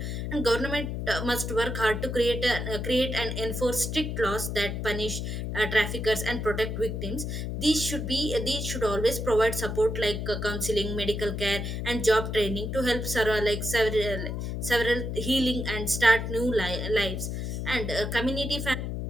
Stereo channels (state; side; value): noise; left; hum, 3 dB below the sound